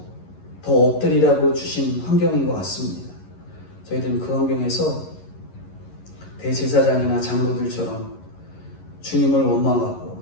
더 엎드리라고 주신 환경인 것 같습니다. 저희들은 그 환경에서 대제사장이나 장로들처럼 주님을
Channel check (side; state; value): right; late; 11 ms